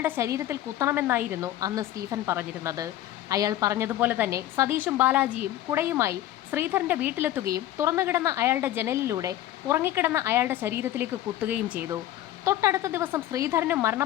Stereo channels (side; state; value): right; quieter; 13.5 dB